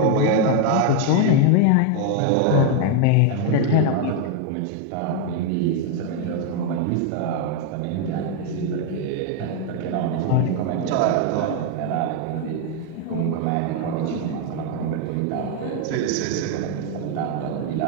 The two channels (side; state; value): both; different; correlation 0.01